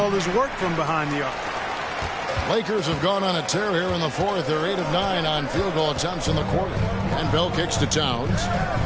his work from behind the arc. Lakers have gone on a tear here in the fourth. They're 8 of 9 on field goal attempts in the quarter. And Bell kicks to Towns.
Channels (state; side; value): identical; both; correlation 1.00